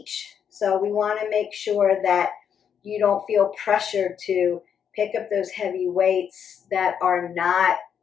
So we want to make sure that you don't feel pressured to pick up those heavy weights that are not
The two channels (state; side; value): quieter; right; 8.0 dB